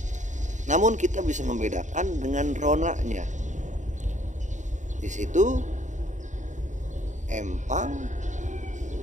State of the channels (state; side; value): late; left; 0.36 ms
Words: Namun kita bisa membedakan dengan ronanya. Di situ empang